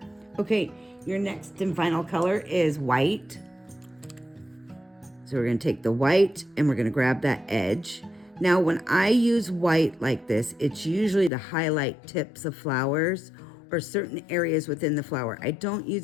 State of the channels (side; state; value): right; drops out; at 11.3 s